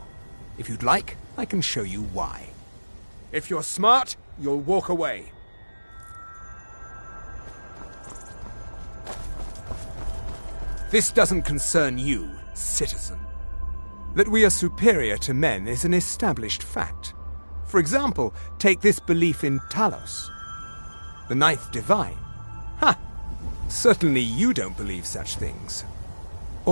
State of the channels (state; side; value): inverted; both; correlation -1.00